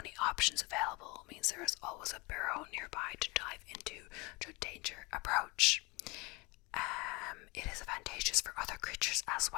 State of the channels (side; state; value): right; quieter; 26.2 dB